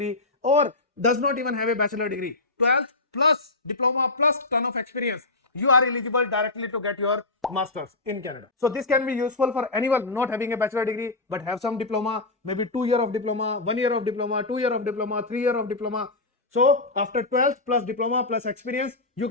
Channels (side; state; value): right; quieter; 3.2 dB